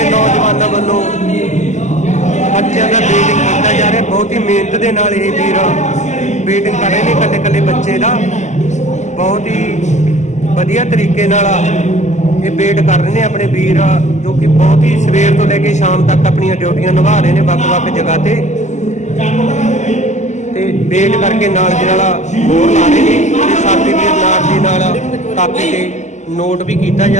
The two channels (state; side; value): late; right; 0.34 ms